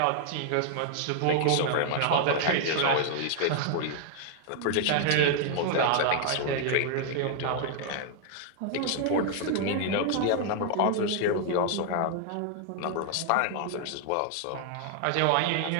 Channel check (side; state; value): both; different; correlation -0.01